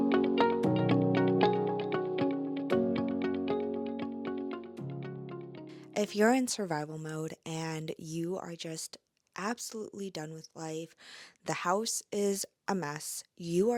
If you're in survival mode and you are just absolutely done with life, the house is a mess, you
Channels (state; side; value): identical; both; correlation 1.00